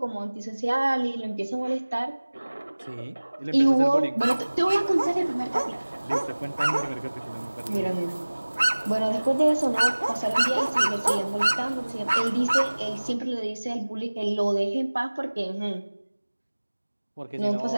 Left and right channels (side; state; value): both; inverted; correlation -1.00